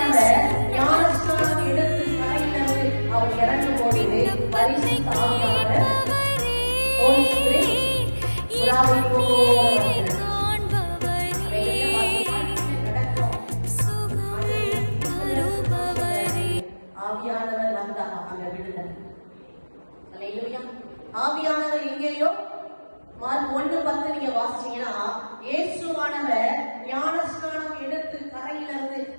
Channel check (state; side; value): inverted; both; correlation -1.00